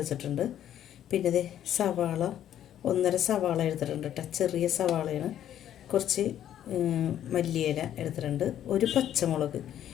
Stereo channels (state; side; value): quieter; right; 11.0 dB